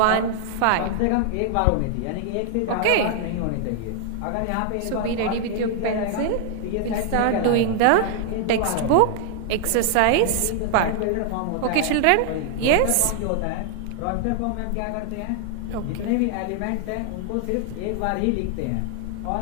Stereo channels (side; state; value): both; different; correlation 0.00